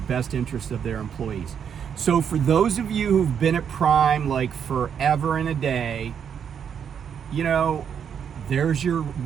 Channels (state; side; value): quieter; left; 7.9 dB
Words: best interest of their employees. So for those of you who've been at Prime like forever and a day, there's your